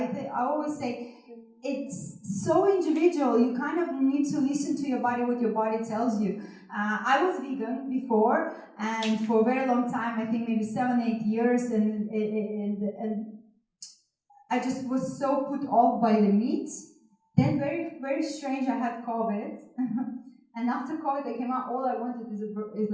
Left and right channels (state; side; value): identical; both; correlation 1.00